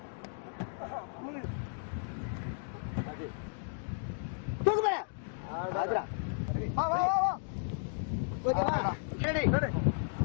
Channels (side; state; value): right; silent; digital silence